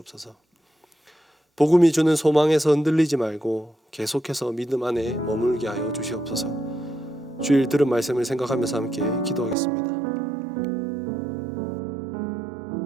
복음이 주는 소망에서 흔들리지 말고 계속해서 믿음 안에 머물게 하여 주시옵소서. 주일 들은 말씀을 생각하면서 함께 기도하겠습니다.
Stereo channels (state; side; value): drops out; left; at 9.6 s